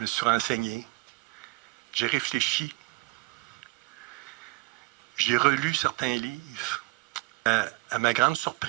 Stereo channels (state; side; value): quieter; left; 23.8 dB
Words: me suis renseigné. J'ai réfléchi. J'ai relu certains livres. À ma grande